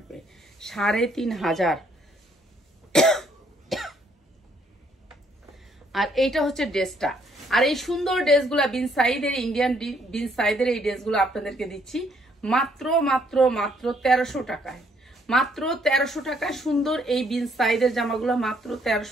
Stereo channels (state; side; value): normal; both; correlation 0.68